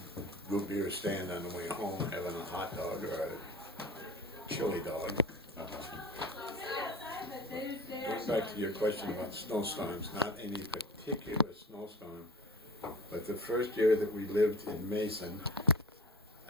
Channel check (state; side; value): normal; both; correlation 0.36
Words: root beer stand on the way home, having a hot dog or a chili dog. Going back to your question about snowstorms, not any particular snowstorm, but the first year that we lived in Mason,